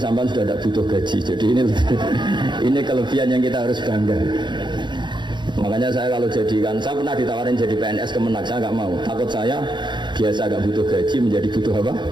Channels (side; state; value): left; late; 0.22 ms